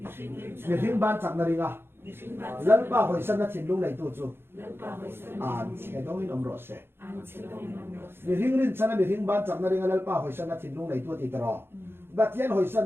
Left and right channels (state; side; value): late; left; 0.11 ms